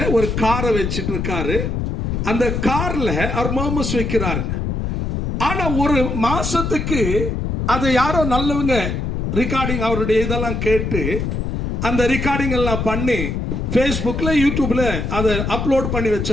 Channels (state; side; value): noise; left; rumble, 2 dB below the sound